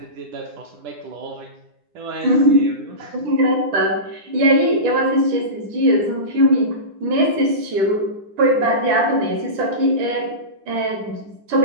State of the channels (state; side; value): late; left; 9.8 ms